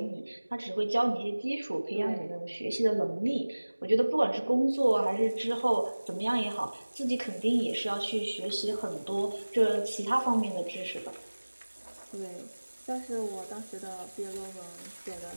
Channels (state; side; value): inverted; both; correlation -1.00